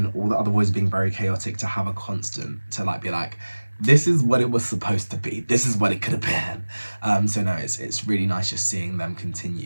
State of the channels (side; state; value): both; inverted; correlation -1.00